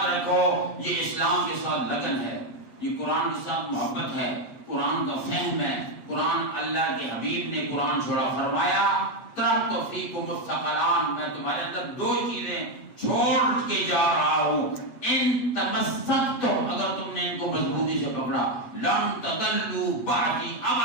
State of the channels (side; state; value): right; late; 7.4 ms